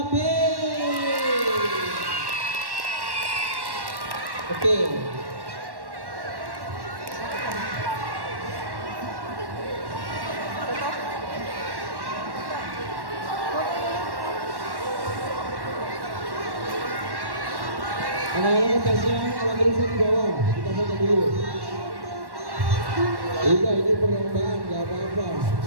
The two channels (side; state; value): left; late; 1.1 ms